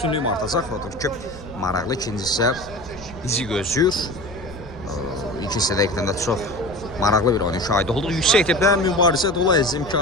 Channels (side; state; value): left; noise; rumble, 18 dB below the sound